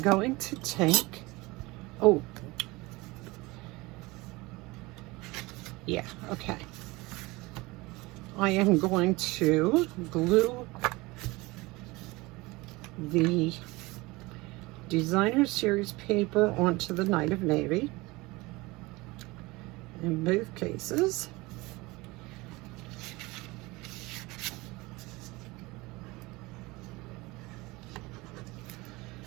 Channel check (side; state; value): left; quieter; 22.5 dB